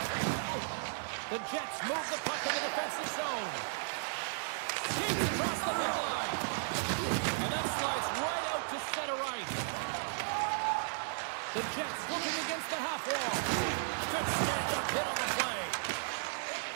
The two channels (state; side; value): silent; left; digital silence